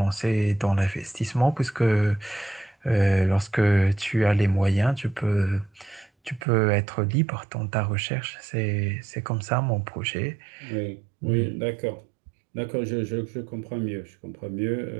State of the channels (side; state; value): left; drops out; at 6.4 s